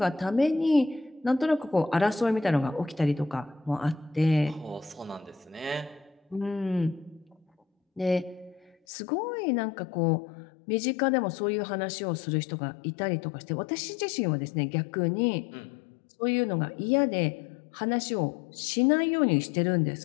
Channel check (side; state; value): right; drops out; at 8.8 s